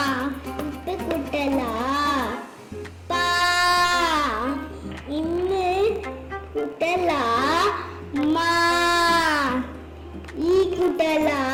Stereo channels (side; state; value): both; identical; correlation 1.00